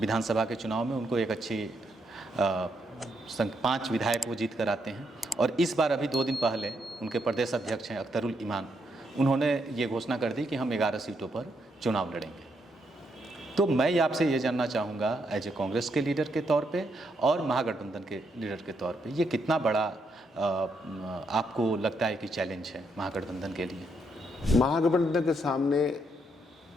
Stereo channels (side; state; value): both; normal; correlation 0.78